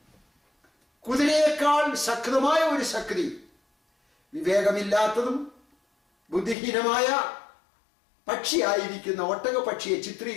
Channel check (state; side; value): drops out; right; at 6.6 s